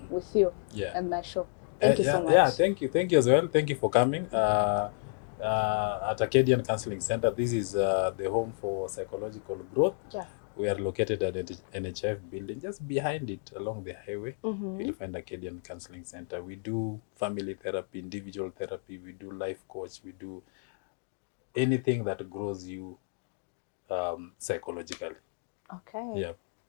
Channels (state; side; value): silent; right; digital silence